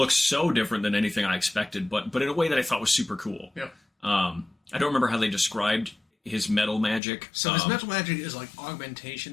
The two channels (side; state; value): right; drops out; at 7.0 s